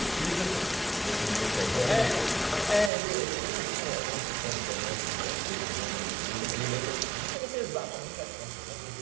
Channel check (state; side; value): drops out; left; at 2.9 s